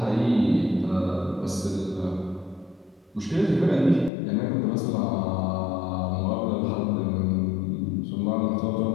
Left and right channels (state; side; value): drops out; right; at 4.1 s